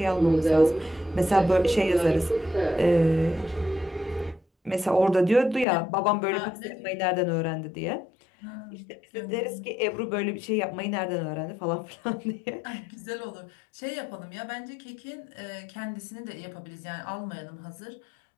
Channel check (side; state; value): right; drops out; at 5.7 s